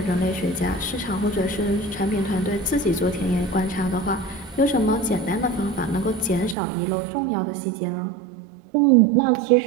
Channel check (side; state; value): left; drops out; at 6.6 s